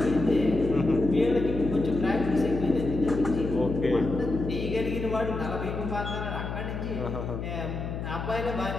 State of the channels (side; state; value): left; noise; hum, 5 dB below the sound